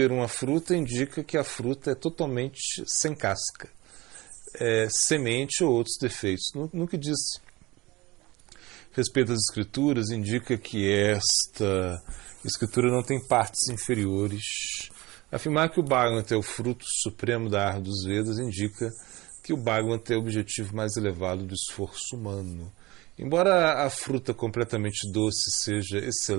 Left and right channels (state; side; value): quieter; left; 20.9 dB